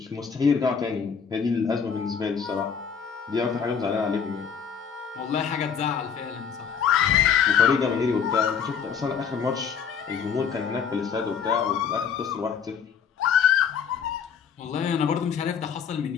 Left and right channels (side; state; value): right; quieter; 7.0 dB